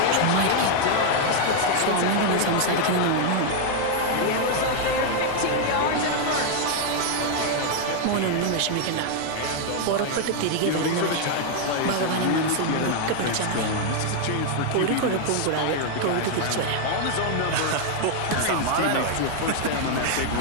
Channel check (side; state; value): both; different; correlation 0.00